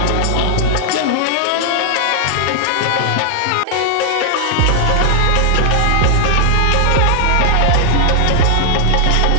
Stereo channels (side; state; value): both; different; correlation 0.00